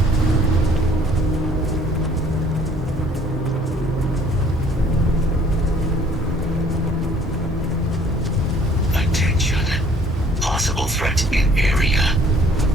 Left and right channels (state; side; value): normal; both; correlation 0.57